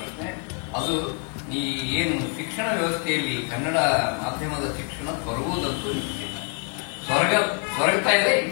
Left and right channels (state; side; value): quieter; right; 39.6 dB